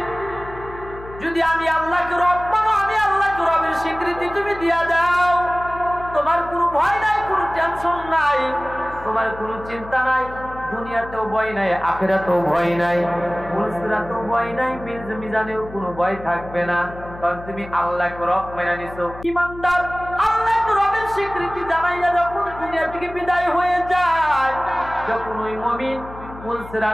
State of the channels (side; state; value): left; noise; hum, 15 dB below the sound